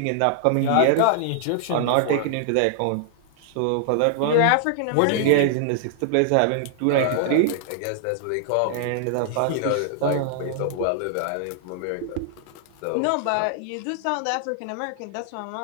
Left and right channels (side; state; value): both; different; correlation -0.01